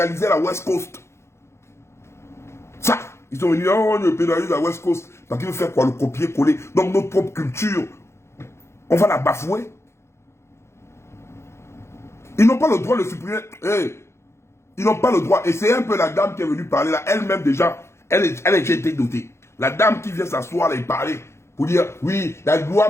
la West Coast. Ça, Ils sont venus, oh, on pénalise la West Coast. Parce qu'ils veulent faire quoi? Le copier-coller. Donc notre propre culture, on va la bafouer. Ils n'ont pas le droit de supprimer. Hey, ils n'ont pas le droit. Et c'est un peu la dame qui est venue parler là. Elle-même déjà, elle a déjà été dotée. La dame qui vient s'asseoir là et parler. Pour dire, oui, la loi,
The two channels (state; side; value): late; right; 0.13 ms